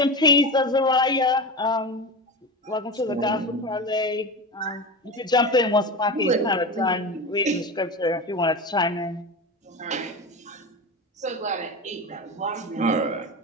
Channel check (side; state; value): both; normal; correlation 0.24